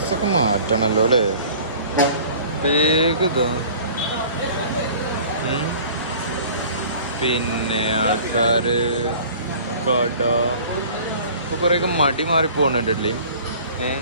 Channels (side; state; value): both; inverted; correlation -0.47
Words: മാറ്റണല്ലോ അല്ലേ. വേഗം ഇതാ. പിന്നെ ആൾക്കാര് കട ഇപ്പൊ കുറേയൊക്കെ മടി മാറി പോകണുണ്ടല്ലേ.